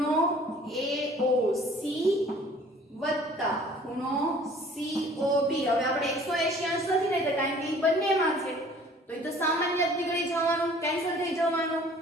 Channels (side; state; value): both; normal; correlation 0.52